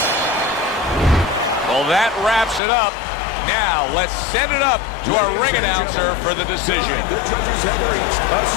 Well, that wraps it up. Now, let's send it up to our ring announcer for the decision. The judges have reached a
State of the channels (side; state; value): right; drops out; at 2.6 s